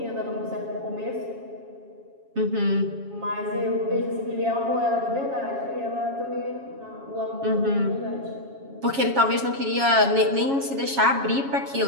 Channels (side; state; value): left; late; 7.3 ms